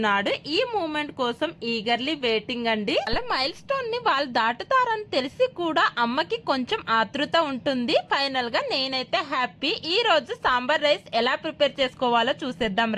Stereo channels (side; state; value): both; identical; correlation 1.00